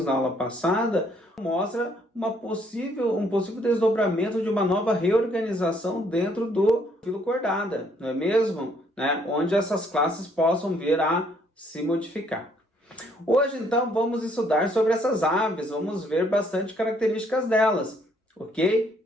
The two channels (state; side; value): normal; both; correlation 0.66